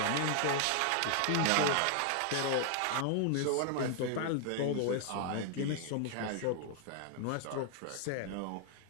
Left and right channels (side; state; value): both; different; correlation 0.00